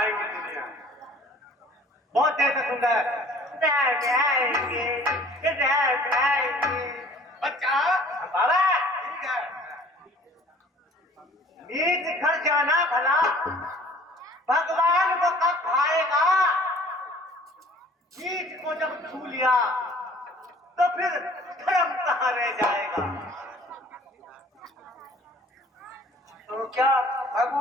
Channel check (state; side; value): normal; both; correlation 0.51